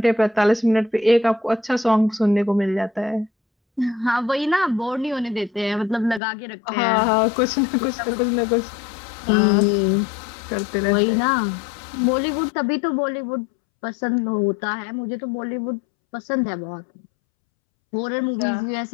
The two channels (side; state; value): right; drops out; at 6.2 s